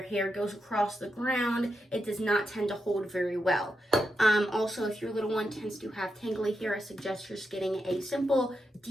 hair goes across the ground. It does not tend to hold very well. Also, if your little one tends to have tangly hair, I suggest just getting a simple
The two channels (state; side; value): normal; both; correlation 0.86